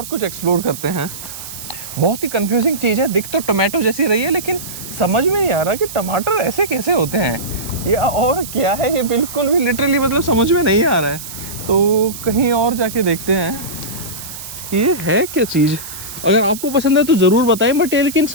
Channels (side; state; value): right; noise; hiss, 11 dB below the sound